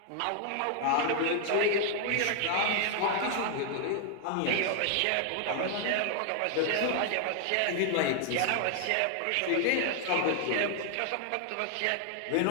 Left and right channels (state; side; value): different; both; correlation 0.00